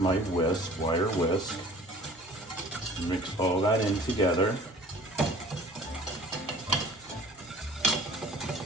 wire whisk. Mix all that in together.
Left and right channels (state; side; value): normal; both; correlation 0.47